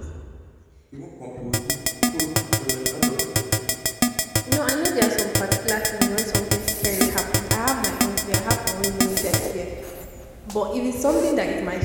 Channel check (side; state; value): both; identical; correlation 1.00